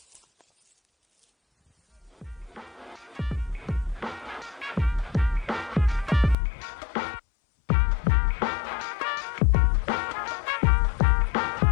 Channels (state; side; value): drops out; right; at 6.4 s